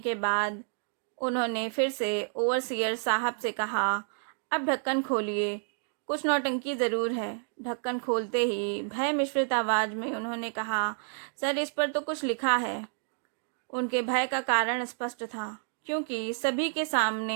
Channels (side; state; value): left; silent; 58 dB below the other